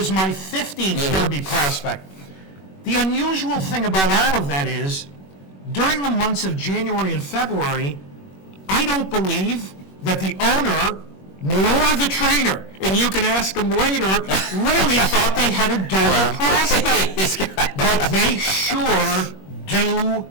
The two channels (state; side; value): late; right; 21 ms